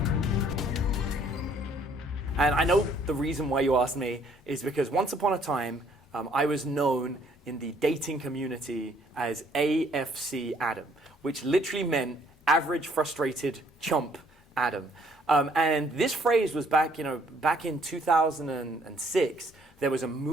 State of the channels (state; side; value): normal; both; correlation 0.63